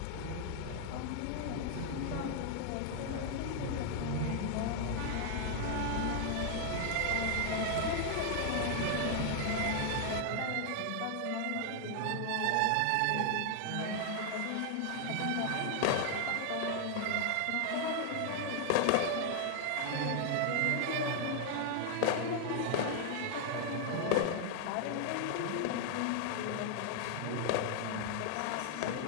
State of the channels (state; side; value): different; both; correlation 0.00